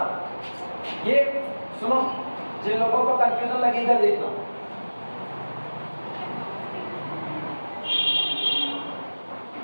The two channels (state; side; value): inverted; both; correlation -1.00